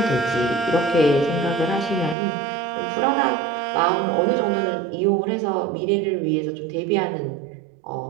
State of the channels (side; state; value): left; drops out; at 2.1 s